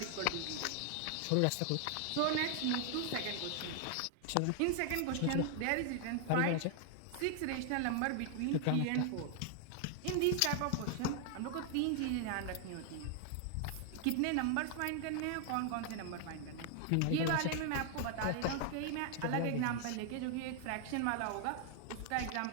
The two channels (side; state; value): both; different; correlation 0.00